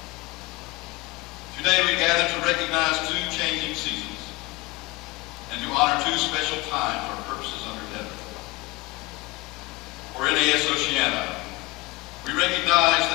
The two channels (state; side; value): quieter; right; 22.4 dB